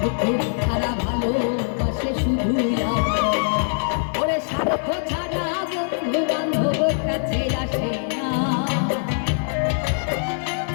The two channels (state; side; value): silent; right; 64 dB below the other